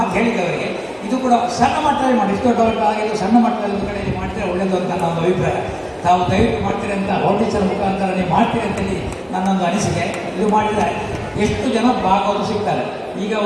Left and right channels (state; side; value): identical; both; correlation 1.00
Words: ಹೇಳಿದವರಿಗೆ ಇದು ಕೂಡ ಸಣ್ಣ ಮಟ್ಟದಲ್ಲಿ ಮಾಡಿ, ಇಷ್ಟು ದೊಡ್ಡವರಿಗೆ ಆಗಿದ್ದು ಸಣ್ಣ ಮಟ್ಟದಲ್ಲಿ ಒಂದು ಕಡೆಯಲ್ಲಿ ಮಾಡ್ತೀರಾ ಒಳ್ಳೆಯದು ಅಂತ ನನ್ನ ಒಂದು ಅಭಿಪ್ರಾಯ. ತಾವು ದಯವಿಟ್ಟು ಮಾಡ್ತೀರಿ ಅಂತ ಫೌಂಡೇಶನ್ ಮುಖಾಂತರ ನೀವು ಮಾಡ್ತೀರಿ ಅಂತೇಳಿ ನನ್ನೊಂದು ಅನಿಸಿಕೆ. ಇದು ಮಾಡಿದರೆ ಎಷ್ಟು ಜನ ಭಾಗವತರು ಸಿಗ್ತಾರೆ. ಈಗ